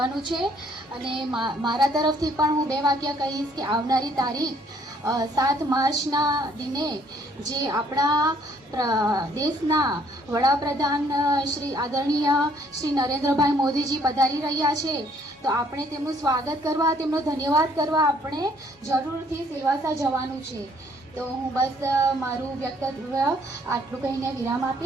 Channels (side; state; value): both; normal; correlation 0.63